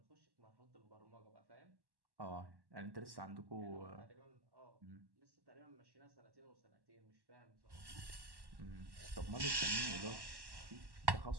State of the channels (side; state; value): left; late; 1.1 ms